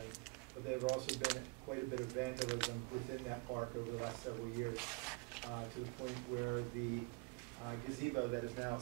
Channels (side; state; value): left; quieter; 31.1 dB